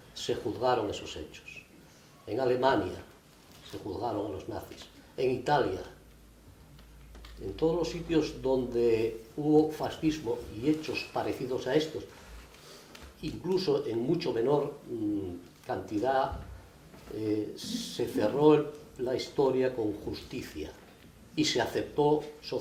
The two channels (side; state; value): both; identical; correlation 1.00